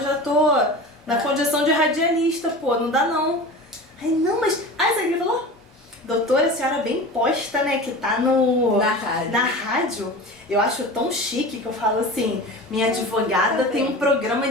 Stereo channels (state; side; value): normal; both; correlation 0.33